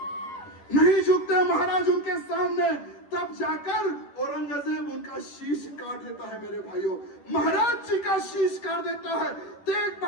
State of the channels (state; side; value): late; right; 10 ms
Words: नहीं झुकते महाराज उनके सामने। तब जाकर औरंगजेब उनका शीश काट देता है मेरे भाइयों। महाराज जी का शीश काट देता है, तेग